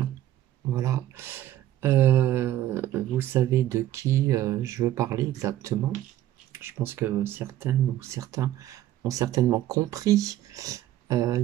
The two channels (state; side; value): quieter; left; 13.3 dB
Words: Voilà. Vous savez de qui je veux parler exactement. Je pense que certaines ou certains ont certainement compris. Il